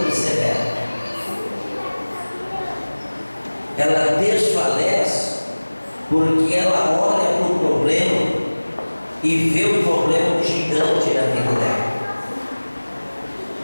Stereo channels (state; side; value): inverted; both; correlation -1.00